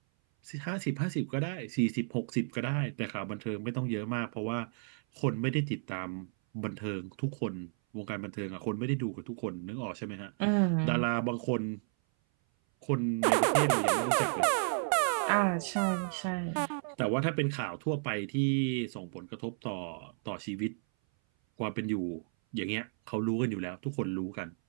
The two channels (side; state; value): left; silent; 56 dB below the other